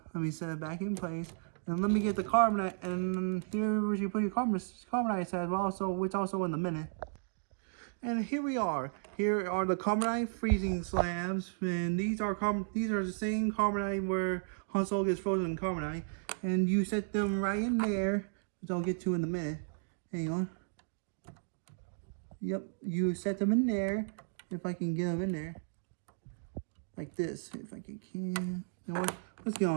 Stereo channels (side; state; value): left; silent; digital silence